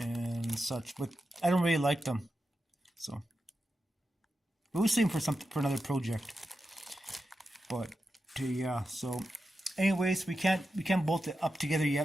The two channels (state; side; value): normal; both; correlation 0.90